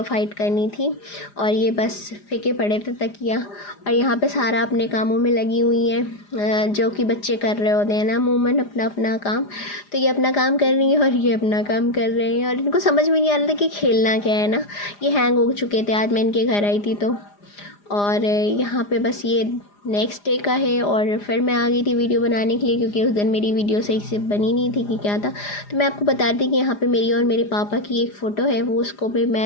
फाइट करनी थी। और ये बस फेंके पड़े थे तकिया। और यहाँ पे सारा अपने कामों में लगी हुई हैं जो कि बच्चे कर रहे होते हैं ना अमूमन अपना अपना काम। तो ये अपना काम कर रही है और ये अपना काम कर रहे हैं और इनको समझ में नहीं आ रहा था कि खेलना क्या है ना। ये हैंग हो चुके थे, आज मैं इनके घर आई थी तो। और यहाँ पे बस ये नेक्स्ट डे का है और फिर मैं आ गई थी वीडियो बनाने के लिए, क्योंकि उस दिन मेरी वीडियो सही से बनी नहीं थी कि क्या था। तो मैं आपको बता दी कि यहाँ पे मेरी और मेरे पापा की एक फ़ोटो है, वो उसको भी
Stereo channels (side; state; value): right; late; 4.9 ms